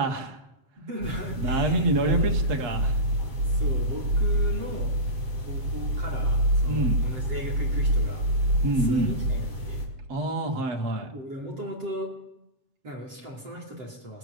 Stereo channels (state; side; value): late; left; 7.6 ms